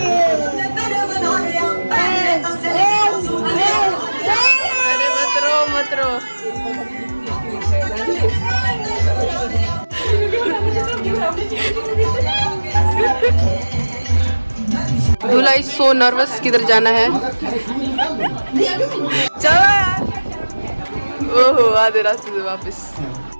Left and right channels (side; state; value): both; inverted; correlation -1.00